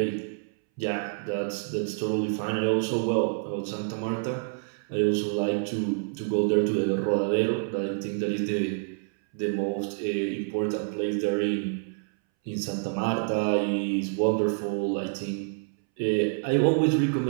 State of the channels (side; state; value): left; silent; 60 dB below the other